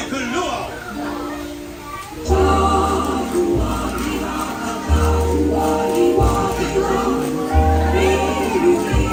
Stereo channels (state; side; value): identical; both; correlation 1.00